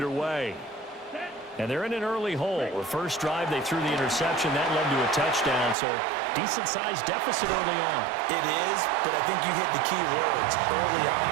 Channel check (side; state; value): left; drops out; at 5.8 s